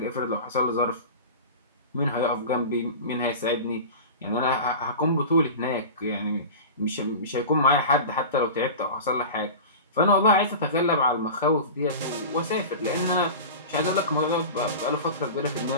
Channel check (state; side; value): inverted; both; correlation -0.32